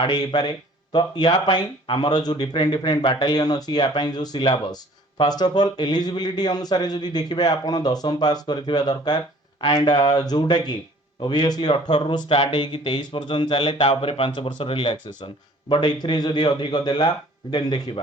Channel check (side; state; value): both; normal; correlation 0.53